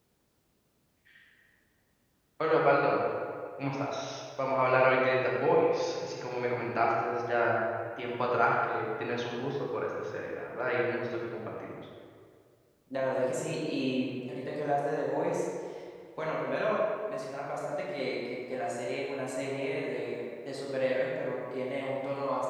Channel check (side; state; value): both; identical; correlation 1.00